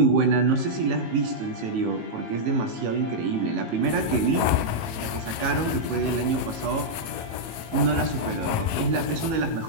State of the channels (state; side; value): late; left; 18 ms